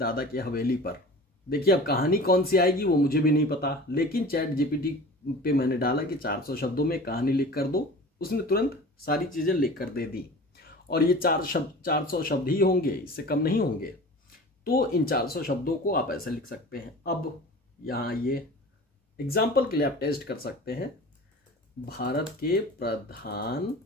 की हवेली पर। देखिए, अब कहानी कौन सी आएगी वो मुझे भी नहीं पता, लेकिन चैट जीपीटी पे मैंने डाला कि 400 शब्दों में कहानी लिख कर दो, उसने तुरंत सारी चीजें लिख कर दे दी। और ये 400 शब्द ही होंगे, इससे कम नहीं होंगे। तो इन 400 शब्दों को आप ऐसे लिख सकते हैं। अब यहाँ ये एग्जाम्पल के लिए आप टेस्ट कर सकते हैं, भारत के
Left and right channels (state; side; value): normal; both; correlation 0.39